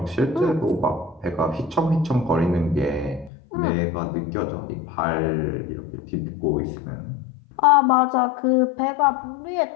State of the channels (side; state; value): right; drops out; at 3.3 s